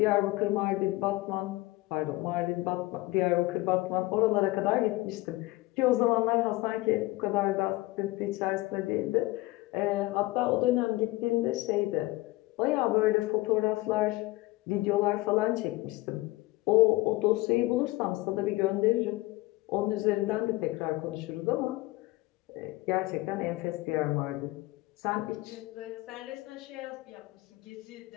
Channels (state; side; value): quieter; right; 20.0 dB